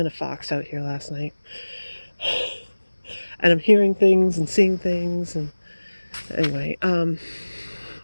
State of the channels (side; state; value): both; inverted; correlation -1.00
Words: a fox out here last night. And I'm hearing things and seeing things. And anyway,